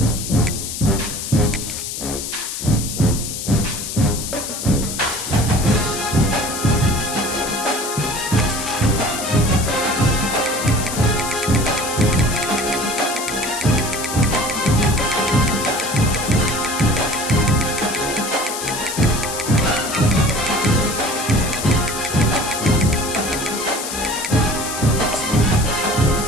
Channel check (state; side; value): noise; left; hiss, 6 dB below the sound